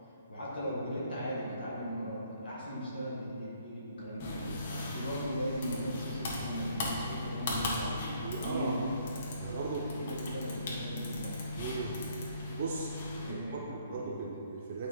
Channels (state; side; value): inverted; both; correlation -0.65